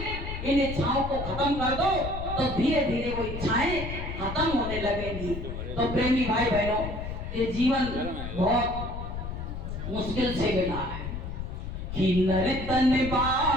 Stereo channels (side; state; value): left; noise; rumble, 6 dB below the sound